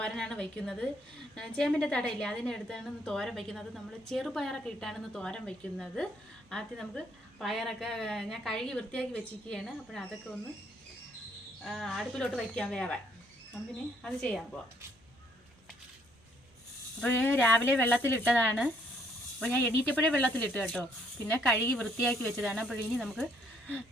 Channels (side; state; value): both; normal; correlation 0.67